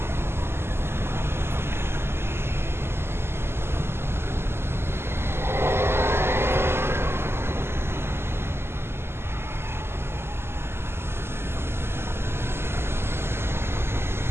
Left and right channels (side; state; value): left; late; 0.12 ms